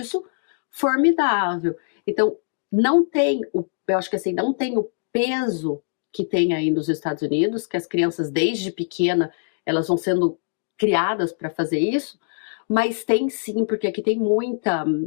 formidável. Então, eu acho que assim, não tem o peso que tem aí nos Estados Unidos, que as crianças desde pequena, elas vão sendo criadas para fazer isso, mas tem sim, porque aqui tem muita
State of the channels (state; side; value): silent; right; digital silence